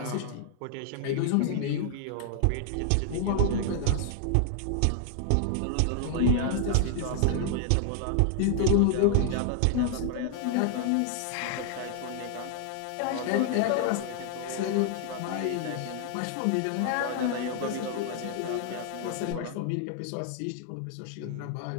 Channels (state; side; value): different; both; correlation 0.00